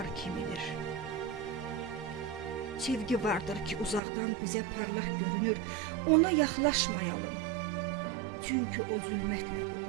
kimidir. Sevgi vardır ki uzaqdan bizə parlaq görünür, ona yaxlaşmayalım, çünki o zülmətlə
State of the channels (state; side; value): drops out; left; at 4.0 s